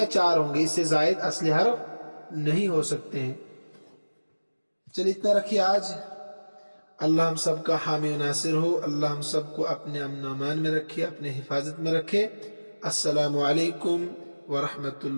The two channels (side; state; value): both; inverted; correlation -1.00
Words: 4 ہوں گے، اس سے زائد اصلی حرف نہیں ہو سکتے ہیں۔ چلیے اتنا رکھیے آج۔ اللہ ہم سب کا حامی و ناصر ہو، اللہ ہم سب کو اپنے امن و امان میں رکھے، اپنے حفاظت میں رکھے۔ السلام علیکم ورحمۃ